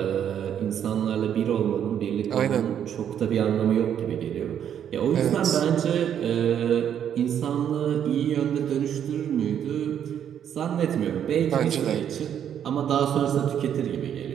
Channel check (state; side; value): quieter; left; 9.3 dB